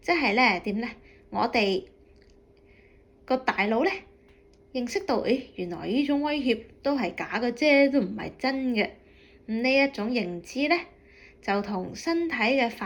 即係咧點咧？我哋個大腦咧認識到，原來呢種威脅都係假嘅啫，都唔係真嘅。呢一種認知咧，就同身體嘅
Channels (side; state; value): both; identical; correlation 1.00